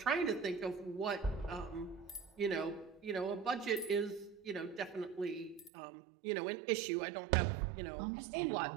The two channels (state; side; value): drops out; left; at 5.7 s